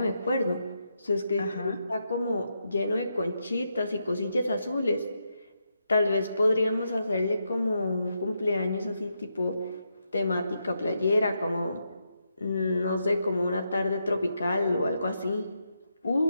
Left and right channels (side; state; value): both; inverted; correlation -0.82